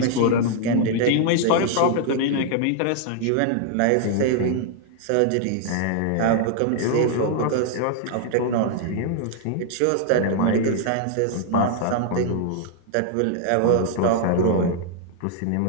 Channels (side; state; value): both; different; correlation 0.00